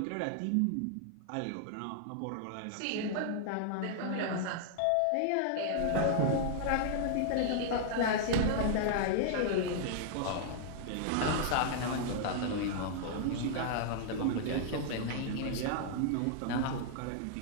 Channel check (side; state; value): both; different; correlation -0.01